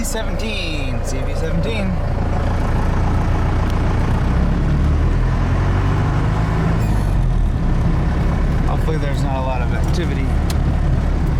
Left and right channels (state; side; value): identical; both; correlation 1.00